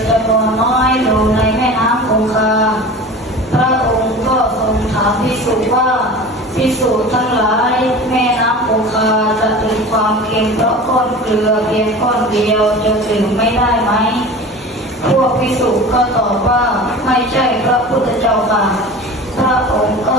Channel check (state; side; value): normal; both; correlation 0.36